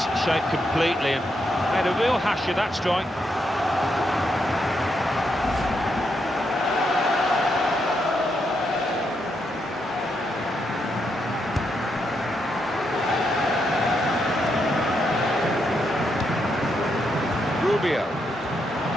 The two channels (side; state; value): both; normal; correlation 0.80